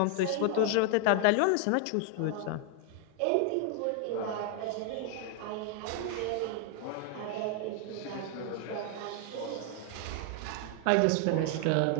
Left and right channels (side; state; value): both; different; correlation 0.00